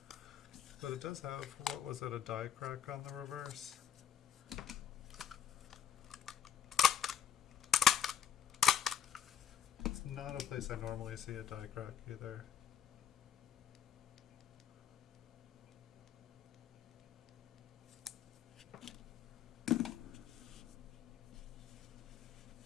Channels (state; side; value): quieter; right; 9.0 dB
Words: But it does have, what was it, a die crack on the reverse? It's not a place I normally see a die crack either.